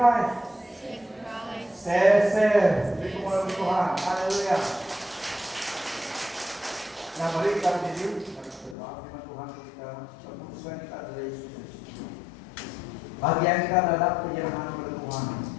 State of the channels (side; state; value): right; drops out; at 8.8 s